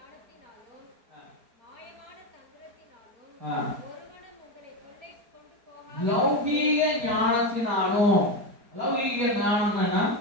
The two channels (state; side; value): late; left; 4.6 ms